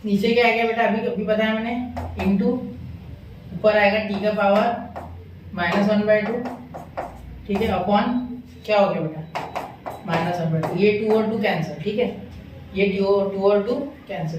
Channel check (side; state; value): both; identical; correlation 1.00